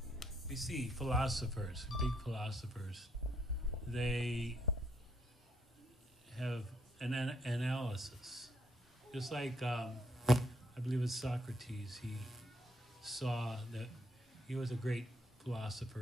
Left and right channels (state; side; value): normal; both; correlation 0.73